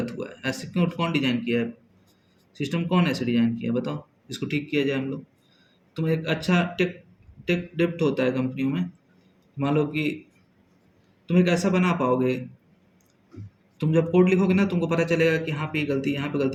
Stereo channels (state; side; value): identical; both; correlation 1.00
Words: हुआ है। ऐसे क्यों, कौन डिज़ाइन किया है? सिस्टम कौन ऐसे डिज़ाइन किया है बताओ? इसको ठीक किया जाए हम लोग। तुम एक अच्छा टेक टेक डेप्थ होता है कंपनियों में। मान लो कि तुम एक ऐसा बना पाओगे, तुम जब कोड लिखोगे ना तुमको पता चलेगा कि यहाँ पे ये गलती है, यहाँ पे